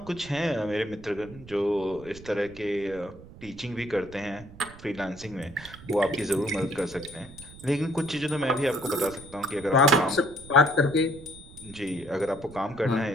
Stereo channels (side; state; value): right; noise; rumble, 18 dB below the sound